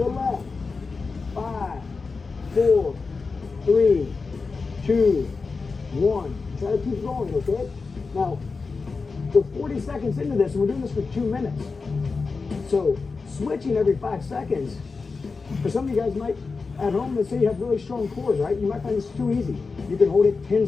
left. 5, 4, 3, 2, 1. Try to keep going, okay? Now, we're 40 seconds into this, and we're doing this for 2 minutes. So, switching every 5 seconds, for some of you guys might, at home, let's say you have really strong cores, right? You might find this too easy. You can hold it 10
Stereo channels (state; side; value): quieter; right; 4.4 dB